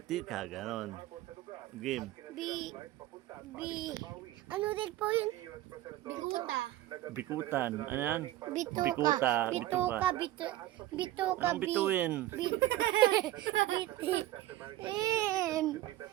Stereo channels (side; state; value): left; quieter; 15.2 dB